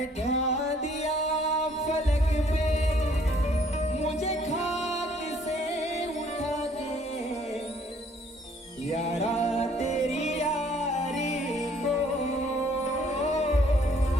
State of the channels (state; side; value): normal; both; correlation 0.61